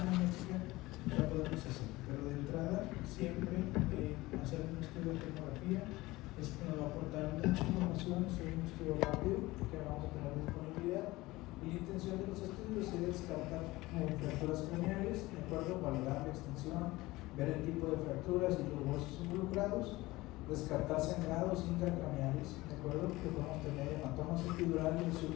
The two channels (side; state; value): right; quieter; 19.7 dB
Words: médica, la podemos hacer. Pero de entrada, siempre hacer un estudio de tomografía es que nos va a aportar mucha información sobre un estudio rápido que vamos a tener disponibilidad. Y la intención de los estudios es descartar fracturas craneales, de acuerdo, valorar la extensión, ver el tipo de fracturas y los huesos involucrados, descartar sangrados intracraneales, de acuerdo, que podemos tener hematomas epidurales,